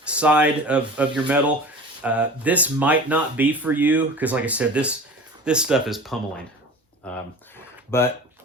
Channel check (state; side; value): normal; both; correlation 0.38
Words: side of your metal, this might not be for you because, like I said, this stuff is pummeling. But